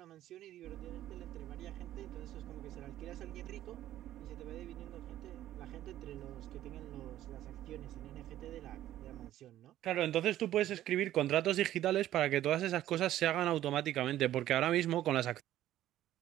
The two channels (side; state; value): left; quieter; 13.2 dB